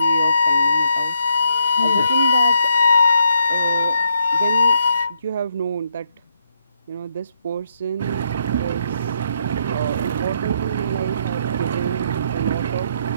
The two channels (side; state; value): both; inverted; correlation -0.77